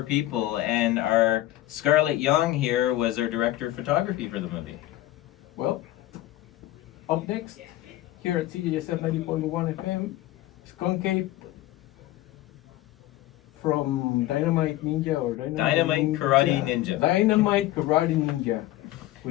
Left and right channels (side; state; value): right; quieter; 15.6 dB